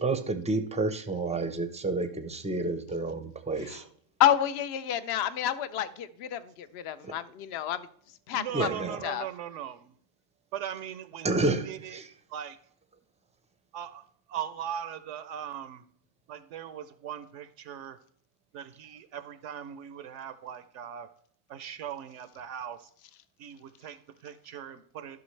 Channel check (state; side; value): normal; both; correlation 0.11